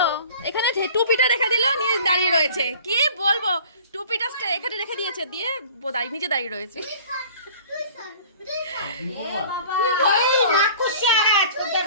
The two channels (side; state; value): both; inverted; correlation -0.46